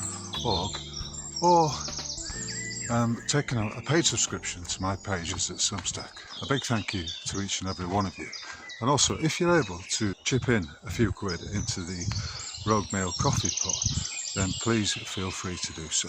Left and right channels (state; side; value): identical; both; correlation 1.00